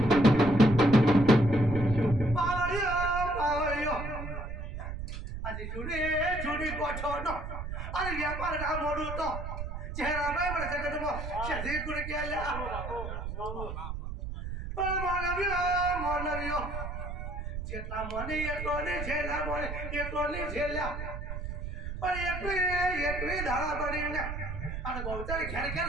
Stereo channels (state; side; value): noise; right; rumble, 6 dB below the sound